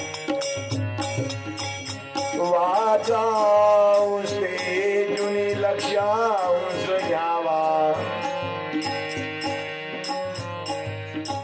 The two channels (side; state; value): both; identical; correlation 1.00